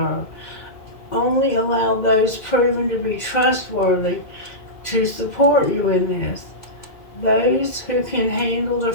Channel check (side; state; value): right; late; 2.4 ms